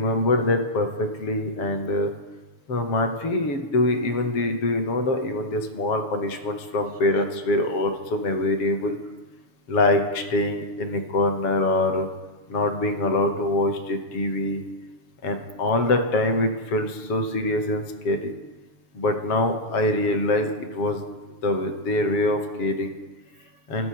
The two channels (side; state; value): right; late; 6.9 ms